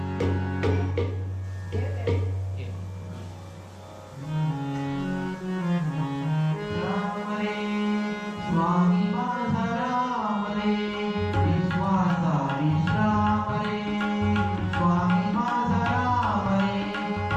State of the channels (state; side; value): identical; both; correlation 1.00